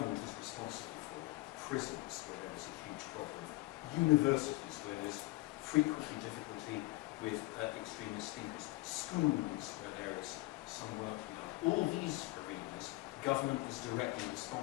is responsible for. Prisons, where there is a huge problem. Universities, where there's frequently difficulty with extremist thinkers. Schools, where there is some work to be done. All these arenas, government is directly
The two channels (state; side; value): quieter; right; 21.2 dB